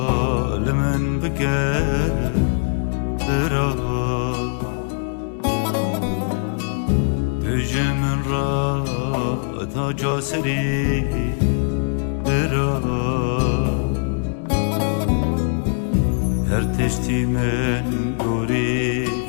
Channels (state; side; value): silent; right; 62 dB below the other